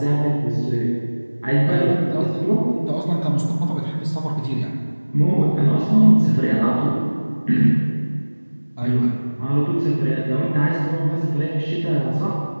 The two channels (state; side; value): inverted; both; correlation -1.00